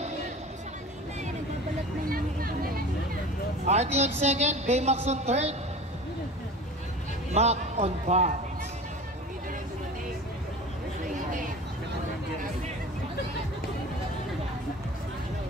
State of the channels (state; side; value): normal; both; correlation 0.37